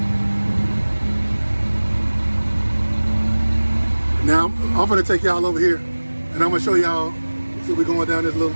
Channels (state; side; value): inverted; both; correlation -1.00